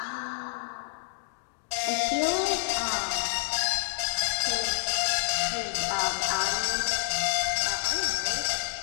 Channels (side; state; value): right; silent; digital silence